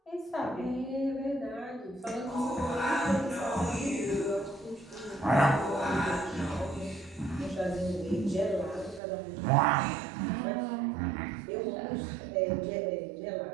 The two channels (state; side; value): drops out; left; at 9.0 s